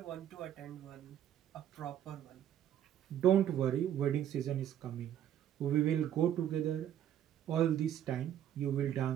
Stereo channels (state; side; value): quieter; left; 10.6 dB